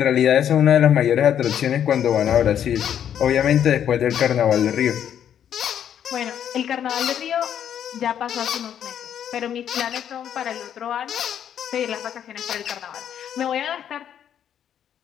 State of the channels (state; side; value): quieter; right; 9.5 dB